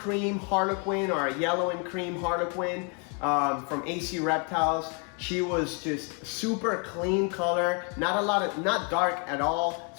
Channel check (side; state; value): right; quieter; 35.9 dB